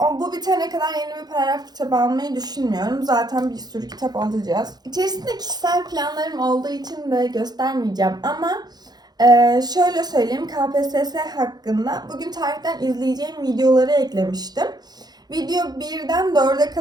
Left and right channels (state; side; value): late; left; 0.19 ms